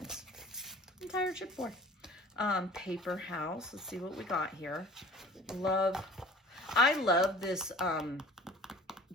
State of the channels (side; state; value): both; normal; correlation 0.46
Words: Entire chipboard. Paper House. Let's see what we got here. I love this